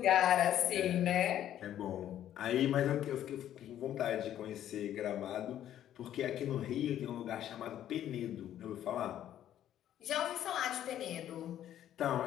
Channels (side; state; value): right; quieter; 11.4 dB